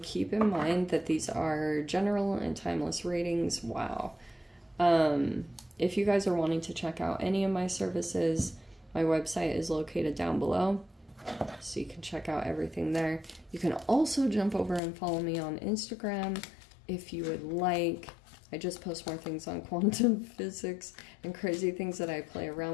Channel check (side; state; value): right; drops out; at 14.8 s